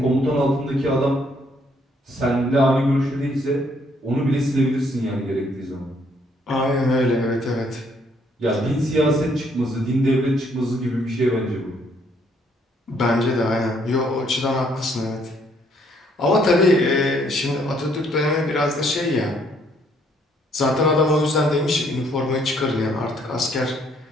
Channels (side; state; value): both; normal; correlation 0.67